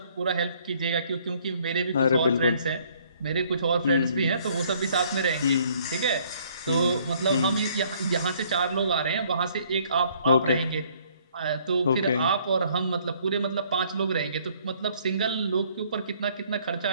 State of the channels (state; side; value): inverted; both; correlation -0.62